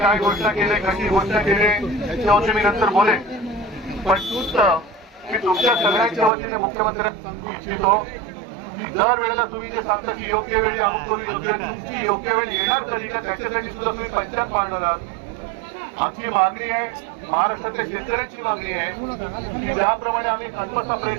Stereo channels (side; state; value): left; drops out; at 6.3 s